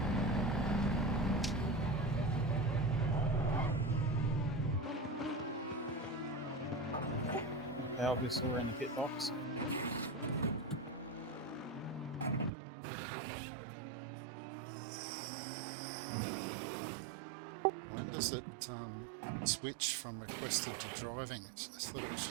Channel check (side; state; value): left; drops out; at 12.5 s